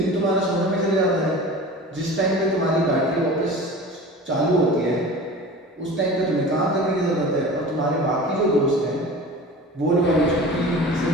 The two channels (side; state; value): both; normal; correlation 0.37